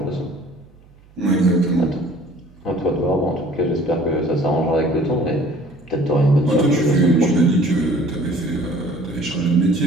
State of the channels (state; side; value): noise; right; hum, 27 dB below the sound